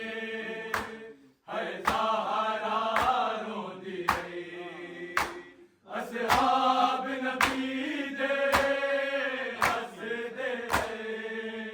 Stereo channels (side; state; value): both; identical; correlation 1.00